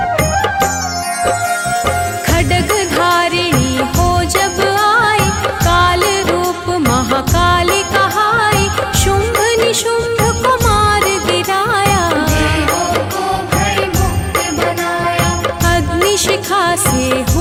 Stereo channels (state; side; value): identical; both; correlation 1.00